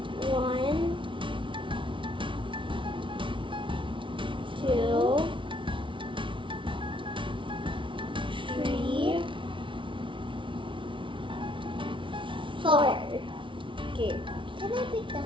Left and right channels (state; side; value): late; left; 0.25 ms